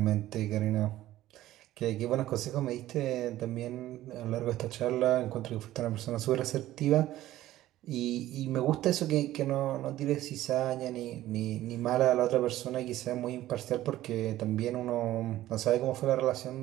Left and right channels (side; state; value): left; quieter; 14.6 dB